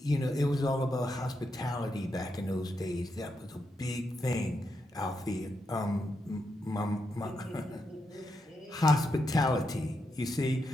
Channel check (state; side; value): normal; both; correlation 0.83